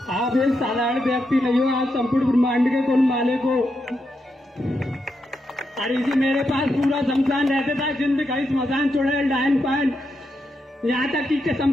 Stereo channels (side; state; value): both; normal; correlation 0.83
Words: आप एक साधारण व्यक्ति नहीं हो, आप संपूर्ण ब्रह्मांड के कुल मालिक हो। अरे जी मेरे पास पूरा शमशान रहता था, जिंद कहीं स्मशान चुड़ैल डायन पान, यहाँ तक कि